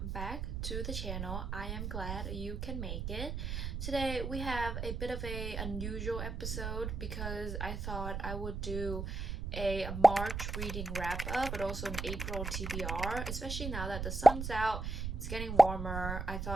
back to the channel. I am glad you can make it. Today we have a bit of a unusual episode because I thought I would do a March reading wrap up but also an April TBR, especially now that the sun's out, it's getting warmer. I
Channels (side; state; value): right; noise; rumble, 4 dB below the sound